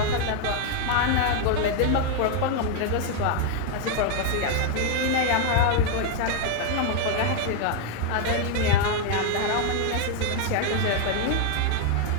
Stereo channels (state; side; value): different; both; correlation 0.00